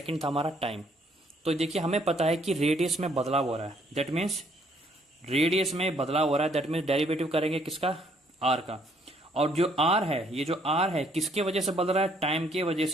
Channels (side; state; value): both; normal; correlation 0.66